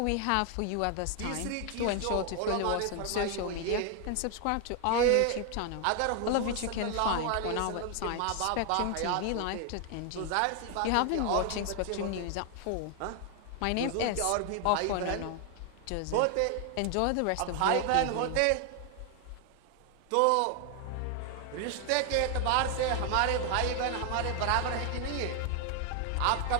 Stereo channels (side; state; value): both; different; correlation 0.00